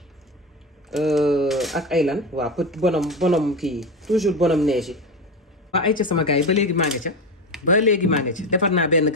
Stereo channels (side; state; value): both; normal; correlation 0.19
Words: ak ay lan waaw petit bonhomme kii toujours bonhomme neige yi. waa ay ca sama gars yi ba léegi maa nga ca defar naa benn